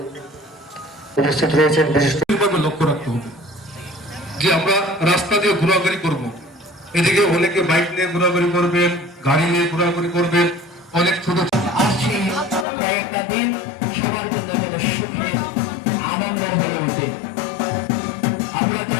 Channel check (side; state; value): right; drops out; at 12.7 s